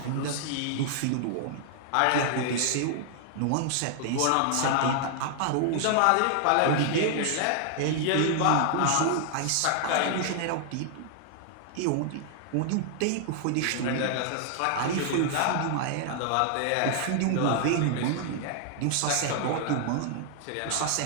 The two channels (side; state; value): both; different; correlation -0.01